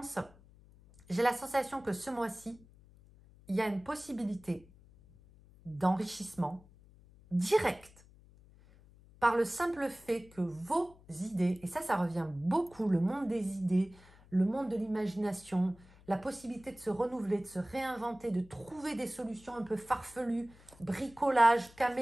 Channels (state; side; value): noise; left; hum, 24 dB below the sound